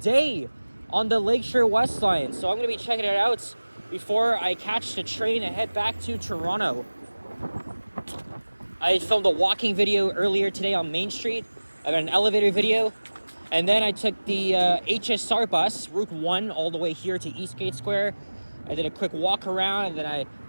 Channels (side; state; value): both; inverted; correlation -1.00